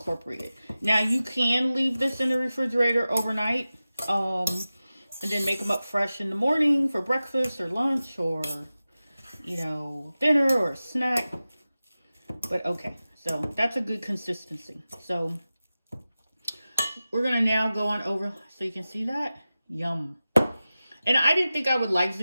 Now you can leave this in the refrigerator overnight, and then make them up fresh in the morning for breakfast or lunch or, you know, dinner or a snack. But okay, so that's a good consistency. So we're gonna now go on over, so you can see that. Yum. And I didn't think I would like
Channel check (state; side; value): inverted; both; correlation -0.95